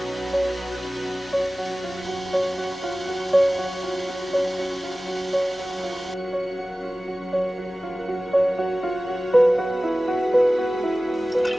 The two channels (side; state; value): both; normal; correlation 0.96